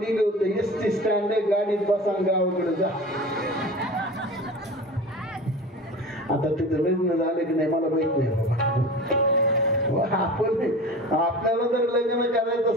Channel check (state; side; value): normal; both; correlation 0.34